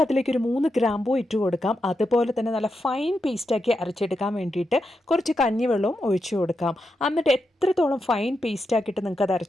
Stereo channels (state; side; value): normal; both; correlation 0.86